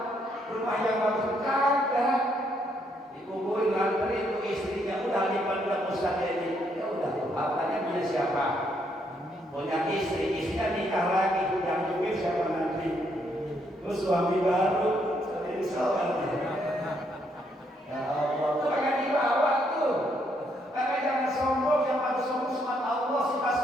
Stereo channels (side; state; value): both; normal; correlation 0.73